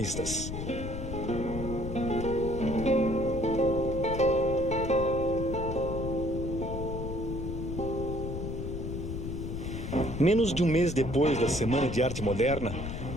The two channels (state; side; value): noise; left; rumble, 5 dB below the sound